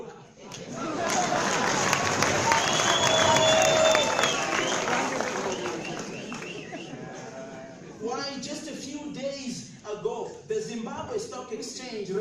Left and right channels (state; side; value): identical; both; correlation 1.00